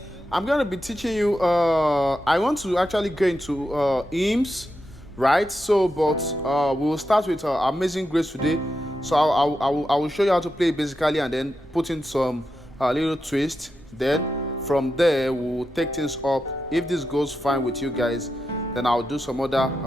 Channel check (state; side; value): normal; both; correlation 0.88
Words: I'm going to be teaching you. I want to actually go into hymns, right? We will start with Amazing Grace today. So I will show you how to play it basically, and then put in some little twist. Then from there we'll take things up. If this goes fine with you guys, then I'll do some other